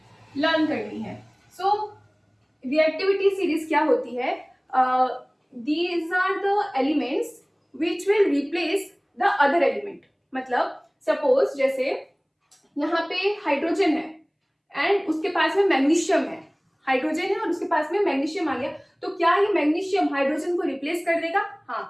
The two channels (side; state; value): both; identical; correlation 1.00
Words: लर्न करनी है। सो रिएक्टिविटी सीरीज क्या होती है? These are the elements which will replace the other element। मतलब सपोज जैसे यहाँ पे हाइड्रोजन है एंड उसके पास में मैग्नीशियम है। हाइड्रोजन है और उसके पास में मैग्नीशियम आ गया, तो क्या ये मैग्नीशियम हाइड्रोजन को रिप्लेस कर देगा?